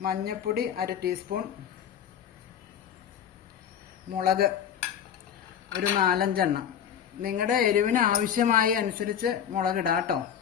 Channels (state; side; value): quieter; right; 9.0 dB